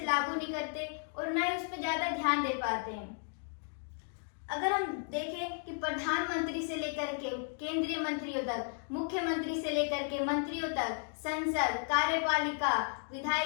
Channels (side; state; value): right; silent; 55 dB below the other